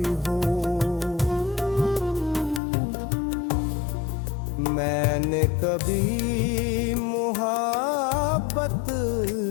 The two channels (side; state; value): right; drops out; at 2.6 s